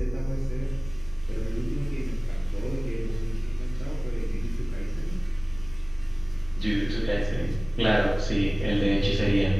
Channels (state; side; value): noise; left; rumble, 17 dB below the sound